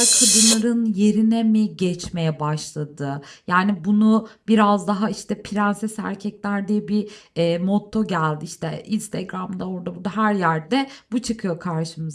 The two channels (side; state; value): both; identical; correlation 1.00